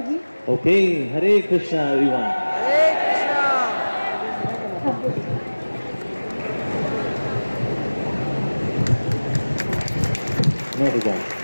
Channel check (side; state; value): both; inverted; correlation -1.00